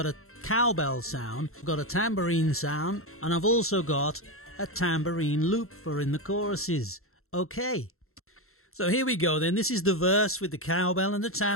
a cowbell sound, I've got a tambourine sound, and I've also got a tambourine loop for in the choruses. Okay, so here we go then. This is the verse with the cowbell and the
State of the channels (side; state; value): right; late; 0.62 ms